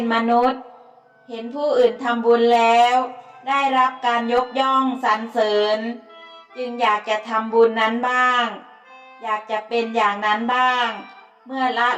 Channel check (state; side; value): identical; both; correlation 1.00